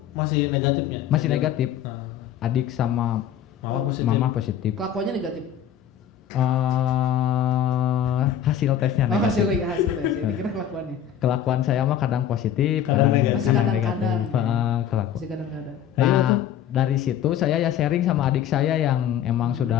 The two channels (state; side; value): quieter; right; 9.6 dB